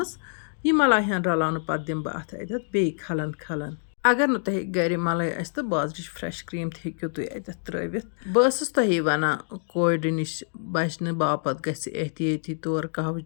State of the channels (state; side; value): silent; right; 61 dB below the other